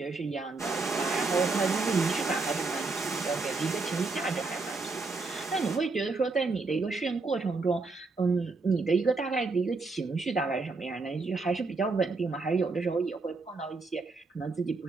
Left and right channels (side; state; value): left; quieter; 3.9 dB